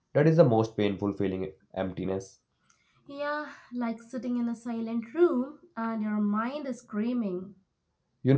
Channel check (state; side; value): identical; both; correlation 1.00